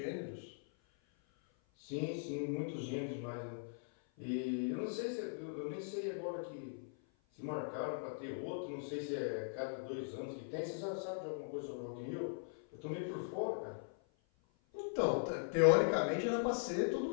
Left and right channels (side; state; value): right; silent; 51 dB below the other